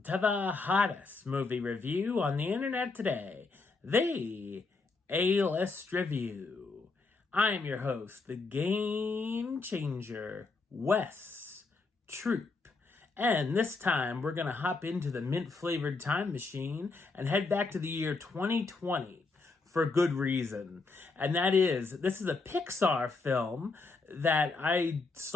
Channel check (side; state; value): right; quieter; 3.9 dB